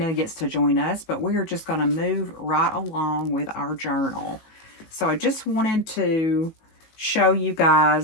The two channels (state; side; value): late; right; 18 ms